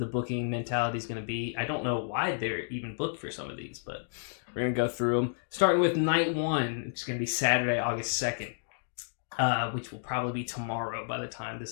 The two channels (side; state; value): right; silent; digital silence